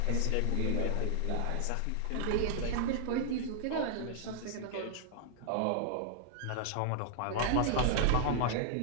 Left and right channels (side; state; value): both; different; correlation -0.01